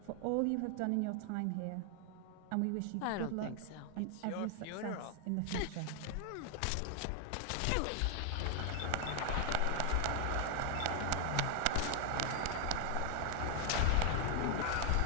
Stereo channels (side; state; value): both; different; correlation 0.00